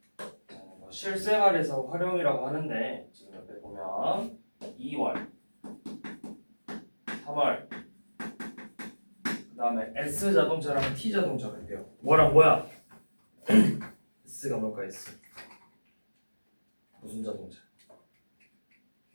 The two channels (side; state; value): both; inverted; correlation -1.00